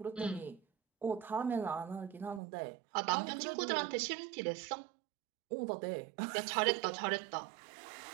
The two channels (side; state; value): left; drops out; at 2.4 s